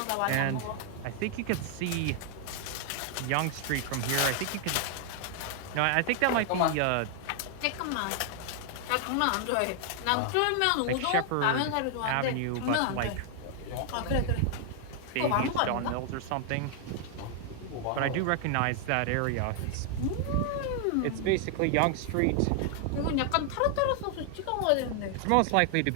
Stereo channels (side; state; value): both; different; correlation 0.00